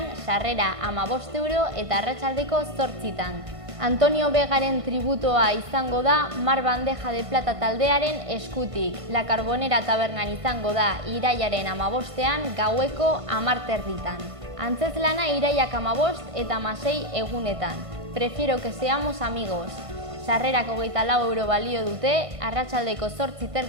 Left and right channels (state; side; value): late; left; 1.5 ms